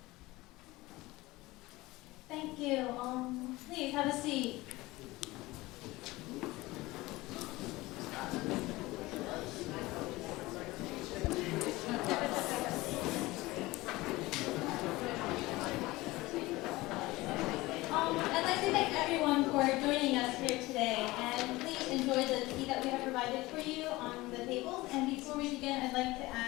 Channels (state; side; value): quieter; right; 20.0 dB